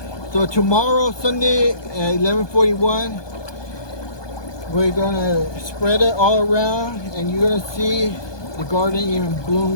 So tomorrow, Sunday at 11:41, we're going to spread it all around and you're going to see the garden even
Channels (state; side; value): late; right; 1.2 ms